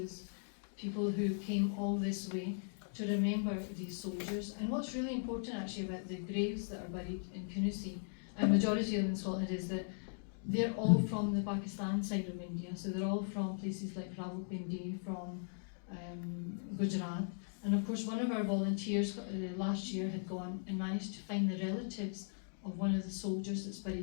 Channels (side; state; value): right; silent; digital silence